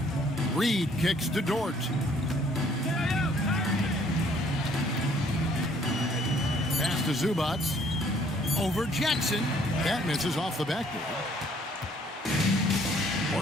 Reed kicks to Dort. Pass to Zubac. Over Jackson. That misses off the backboard.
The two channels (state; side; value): normal; both; correlation 0.61